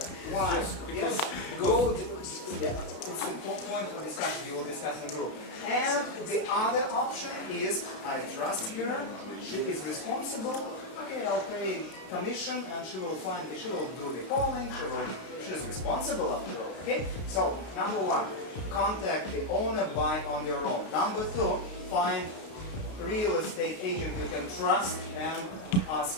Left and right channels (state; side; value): late; right; 32 ms